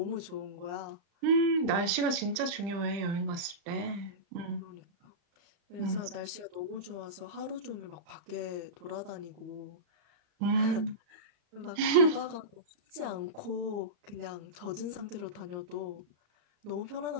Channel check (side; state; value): left; late; 35 ms